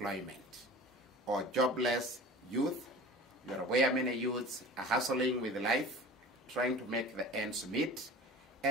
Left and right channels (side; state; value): both; normal; correlation 0.39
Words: or jobless youth. You're aware many youths are hustling with life, trying to make the ends meet,